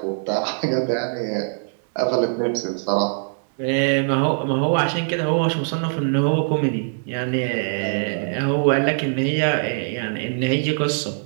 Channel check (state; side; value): silent; left; digital silence